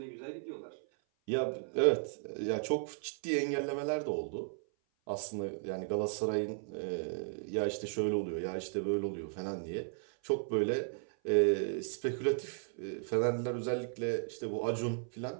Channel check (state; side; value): silent; left; 54 dB below the other